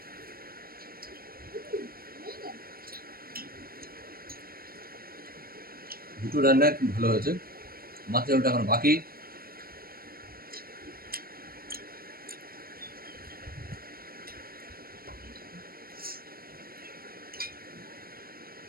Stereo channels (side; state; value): left; late; 0.43 ms